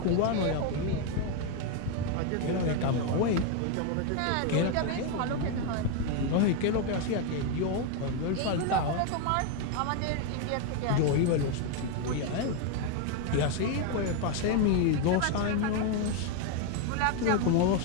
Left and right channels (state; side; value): different; both; correlation 0.01